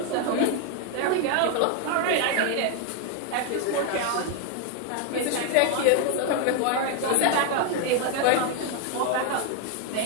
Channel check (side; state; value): both; different; correlation 0.00